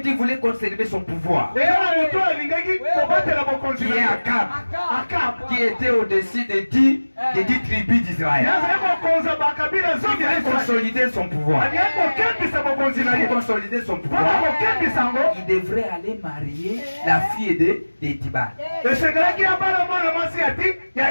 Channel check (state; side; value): inverted; both; correlation -1.00